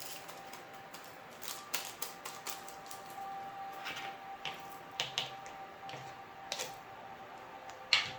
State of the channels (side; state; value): both; identical; correlation 1.00